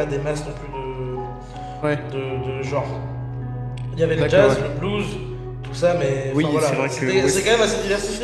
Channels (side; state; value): both; identical; correlation 1.00